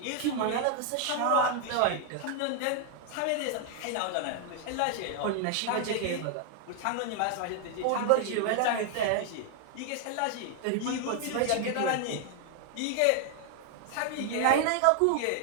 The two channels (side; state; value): both; different; correlation 0.00